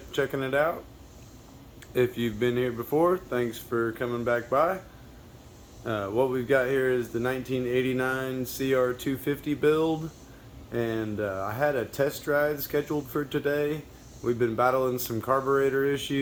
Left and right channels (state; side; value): identical; both; correlation 1.00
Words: it out. If you've been here before, thanks for coming back by. What we've got here is the 1989 CR250 build, and I had a test drive scheduled for today. We've been battling some carburetor